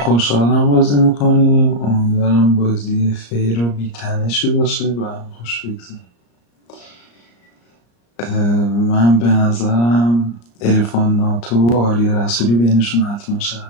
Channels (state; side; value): late; right; 34 ms